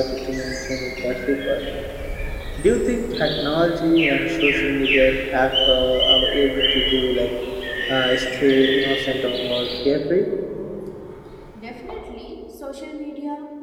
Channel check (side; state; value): both; identical; correlation 1.00